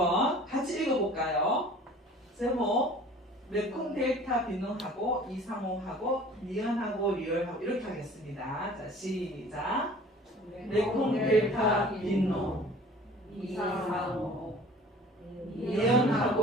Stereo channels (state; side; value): normal; both; correlation 0.47